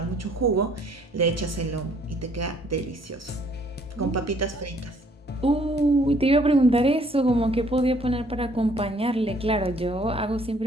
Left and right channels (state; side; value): normal; both; correlation 0.62